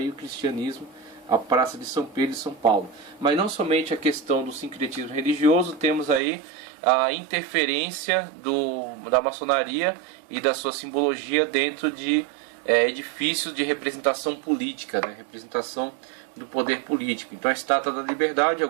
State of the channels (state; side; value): drops out; left; at 6.2 s